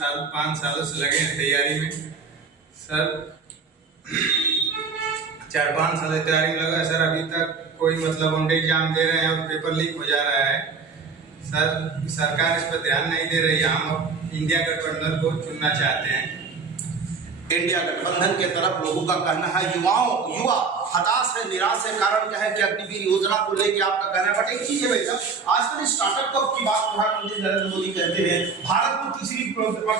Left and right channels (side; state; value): left; quieter; 5.0 dB